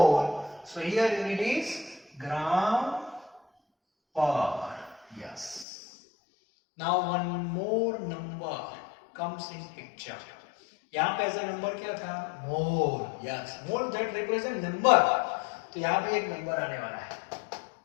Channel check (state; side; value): drops out; right; at 5.7 s